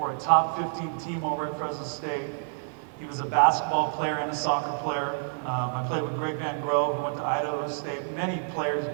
a top 15 team over at Fresno State. He was a basketball player and a soccer player. I played with Greg Van Grove, who went to Idaho State. Many players,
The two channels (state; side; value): silent; left; digital silence